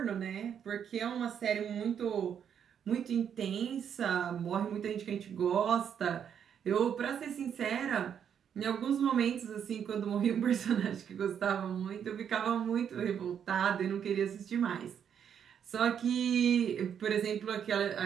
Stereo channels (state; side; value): quieter; left; 8.3 dB